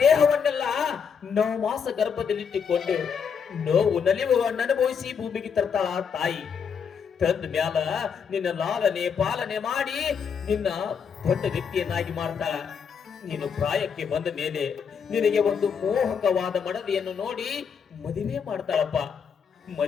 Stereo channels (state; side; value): quieter; right; 6.7 dB